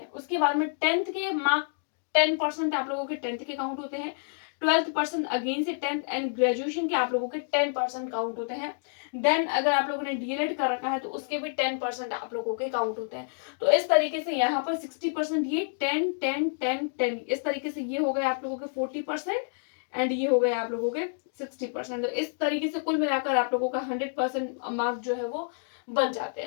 उसके बाद में 10th के मार्क 10% आप लोगों के 10th के काउंट होते हैं, 12% अगेन से 10th, एंड ग्रेजुएशन के आप लोगों के 10% काउंट होते हैं। देन अगर आप लोगों ने डीएलएड कर रखा है तो उसके भी 10% आप लोगों के काउंट होते हैं। तो इस तरीके से यहाँ पर 60% ये 10 10 10 10 इस तरीके से ये हो गए आप लोगों के 40%, एंड ये हो गए आप लोगों के 60%। तो इस तरीके से कुल मिलाकर आप लोगों का 100% मार्क जो है वो बन जाते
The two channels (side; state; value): right; silent; digital silence